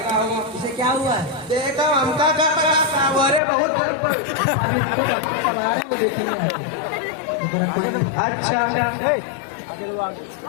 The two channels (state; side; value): drops out; right; at 3.4 s